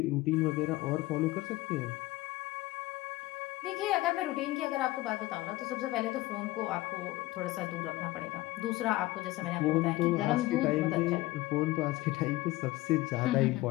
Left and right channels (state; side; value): quieter; right; 18.6 dB